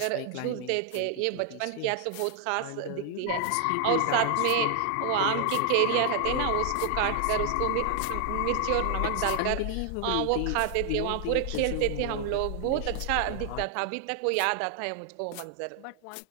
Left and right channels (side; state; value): both; different; correlation 0.00